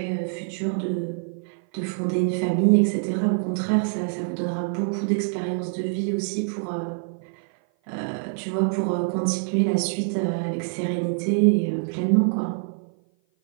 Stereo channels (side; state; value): left; silent; 56 dB below the other